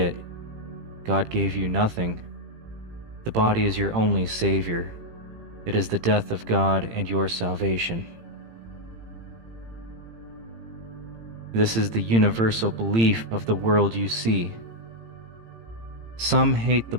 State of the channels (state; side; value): late; left; 18 ms